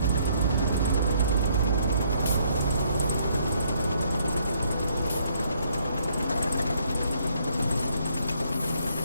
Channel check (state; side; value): inverted; both; correlation -0.68